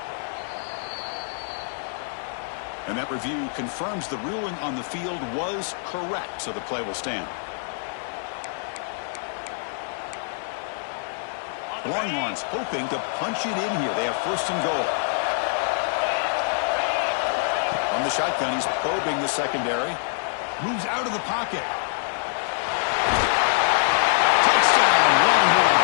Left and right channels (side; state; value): right; silent; digital silence